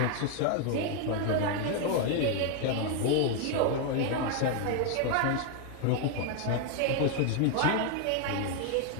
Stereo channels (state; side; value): different; both; correlation 0.00